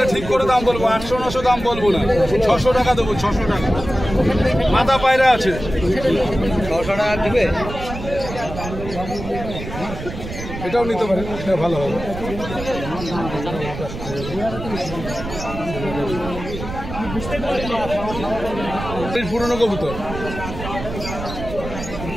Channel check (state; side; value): noise; right; rumble, 9 dB below the sound